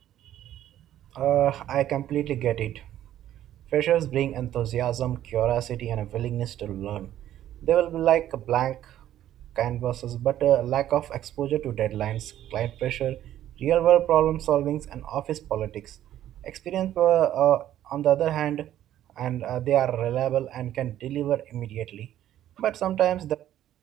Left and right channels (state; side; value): quieter; left; 12.2 dB